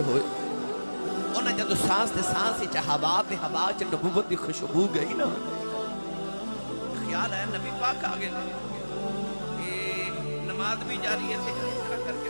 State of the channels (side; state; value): both; inverted; correlation -1.00